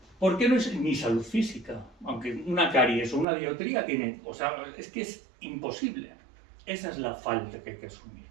¿Por qué no es ni salud física? Aunque una caries o una dioptría tiene, o sea, es que es imposible. Esa es la falta que hay que asumir.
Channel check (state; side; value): drops out; left; at 3.2 s